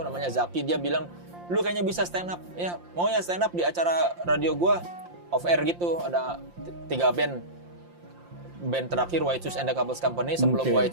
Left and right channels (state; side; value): late; left; 5.7 ms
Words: namanya Zaki, dia bilang, "Lu kayaknya bisa stand up." Ya, mau ya stand up di acara radio gua off air gitu, ada 3 band. Band terakhir White Shoes and the Couples Company, sebelum White